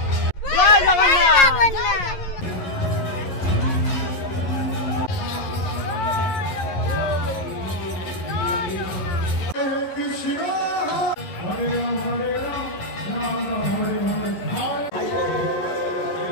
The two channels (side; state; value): right; late; 11 ms